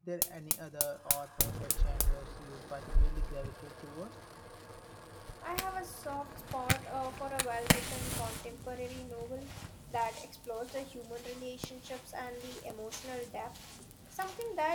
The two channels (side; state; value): both; identical; correlation 1.00